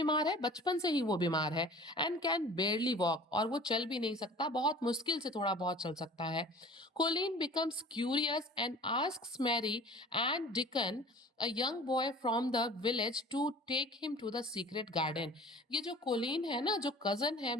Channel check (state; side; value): normal; both; correlation 0.44